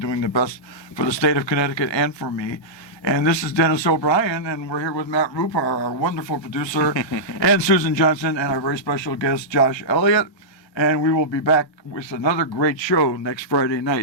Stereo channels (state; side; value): late; right; 1.3 ms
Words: doing the best for the state of Connecticut and for me. And this is Dennis O'Brien, and we're here with Matt Rupar, our wonderful producer, and Susan Johnson, and our very special guest, Josh Elliott. And we will be back with another great show next Friday